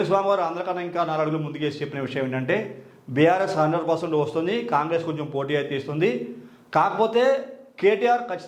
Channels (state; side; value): identical; both; correlation 1.00